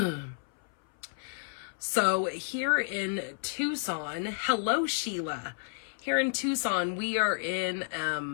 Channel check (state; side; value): silent; right; 57 dB below the other